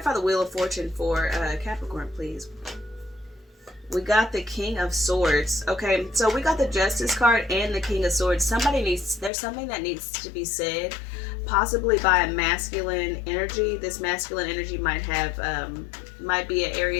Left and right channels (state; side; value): drops out; right; at 9.3 s